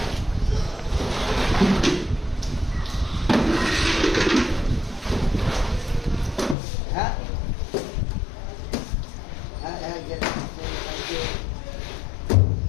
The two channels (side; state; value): right; drops out; at 6.6 s